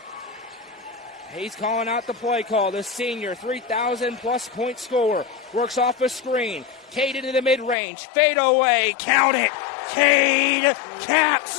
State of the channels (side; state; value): right; drops out; at 7.8 s